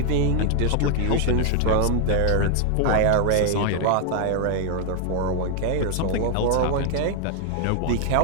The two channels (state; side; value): different; both; correlation 0.00